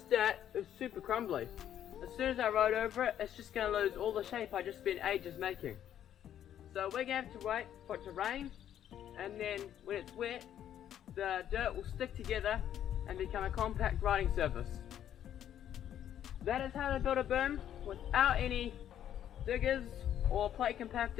dirt is super crumbly. As soon as I rode over it, it's just going to lose all the shape I just spent ages making. So we're going to have to wait for it to rain, and then when it's wet, the dirt will stick together and become a compact riding surface. That is how to build a berm without any diggers or plate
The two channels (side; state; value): right; quieter; 10.5 dB